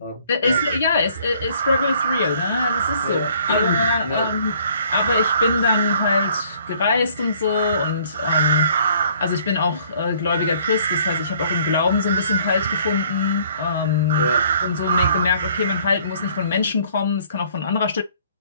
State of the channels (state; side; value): inverted; both; correlation -0.59